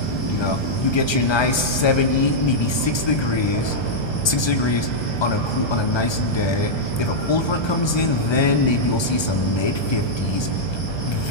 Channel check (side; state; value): right; late; 1.3 ms